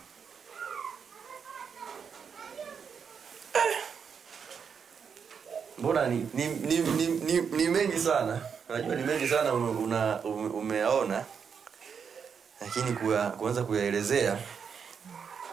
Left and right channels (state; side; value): quieter; left; 6.6 dB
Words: Mbona ni mengi sana. Unajua ni mengi sana umeona. Lakini kuanza kuyaelezea.